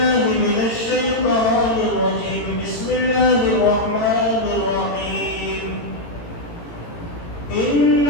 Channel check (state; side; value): late; right; 17 ms